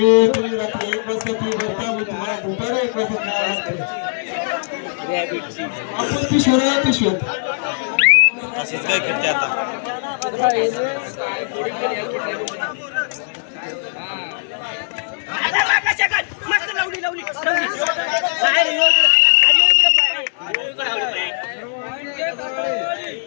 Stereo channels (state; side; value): silent; right; digital silence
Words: तुम्ही रात्री 1 वाजता ती भरता मी तुम्हाला दुपारी एक वाजता खेळावं लागतं. आपण पिशव्या पिशव्यात असंच काय करते आता.